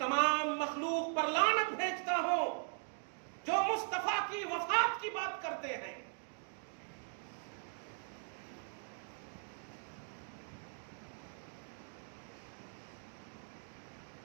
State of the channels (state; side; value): silent; left; 51 dB below the other